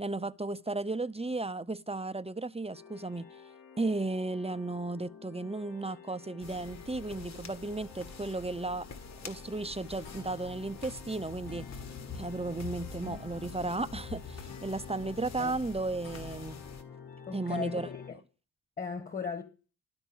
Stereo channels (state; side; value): normal; both; correlation 0.57